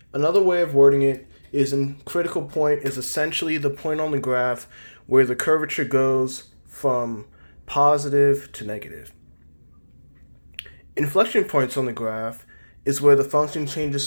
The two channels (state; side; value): inverted; both; correlation -1.00